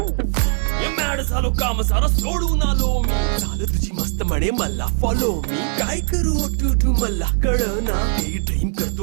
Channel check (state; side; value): silent; left; 66 dB below the other